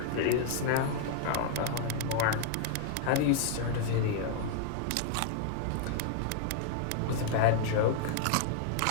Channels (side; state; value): both; different; correlation 0.00